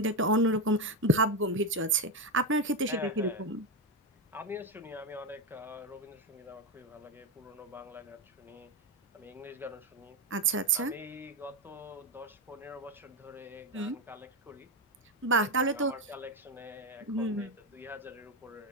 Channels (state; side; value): normal; both; correlation 0.11